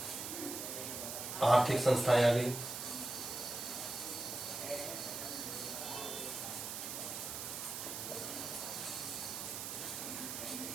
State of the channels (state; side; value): noise; right; hiss, 5 dB below the sound